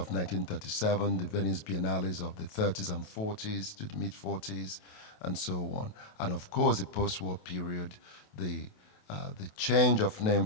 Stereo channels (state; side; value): late; right; 28 ms